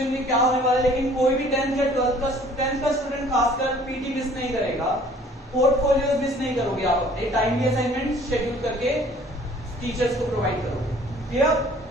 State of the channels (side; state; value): both; normal; correlation 0.54